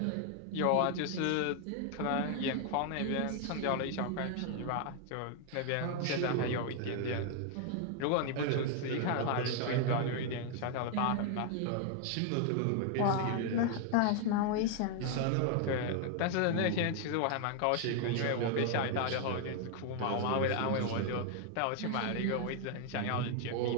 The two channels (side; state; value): both; different; correlation 0.00